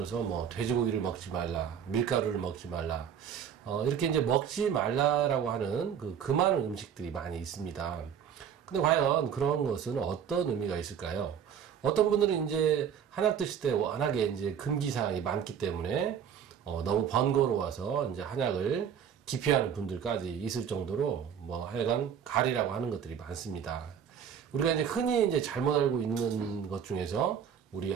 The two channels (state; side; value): quieter; left; 8.2 dB